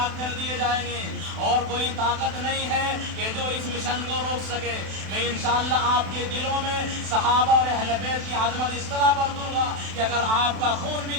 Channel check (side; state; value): left; late; 32 ms